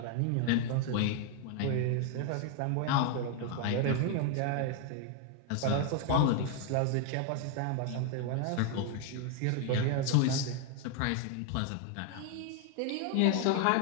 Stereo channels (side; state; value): both; different; correlation 0.00